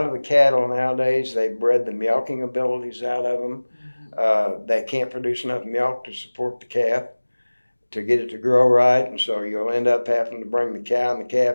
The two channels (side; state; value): both; inverted; correlation -1.00